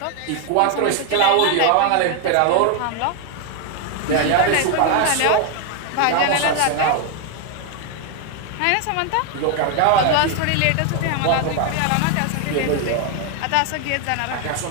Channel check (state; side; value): different; both; correlation 0.01